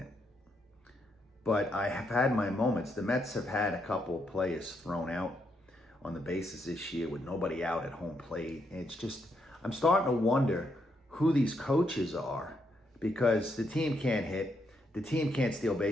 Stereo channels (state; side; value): normal; both; correlation 0.78